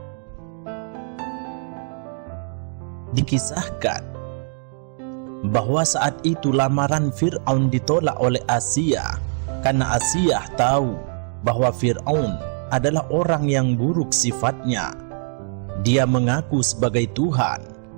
Dikisahkan bahwa saat itu lamaran Fir'aun ditolak oleh Asiyah karena Asiyah tahu bahwa Fir'aun adalah orang yang buruk sifatnya. Dia mengaku sebagai Tuhan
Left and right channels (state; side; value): silent; left; 56 dB below the other